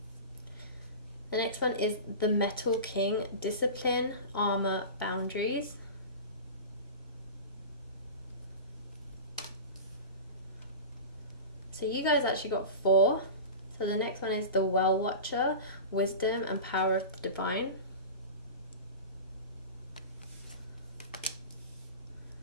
The next one is the Metal King, discipline, armor, boundaries. So you guys actually got 4. So the next one is the Well Watcher, wisdom and power of the divine.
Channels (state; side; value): inverted; both; correlation -0.31